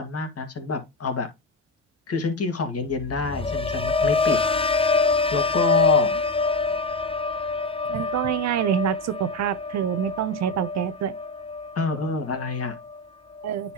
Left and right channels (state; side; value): normal; both; correlation 0.14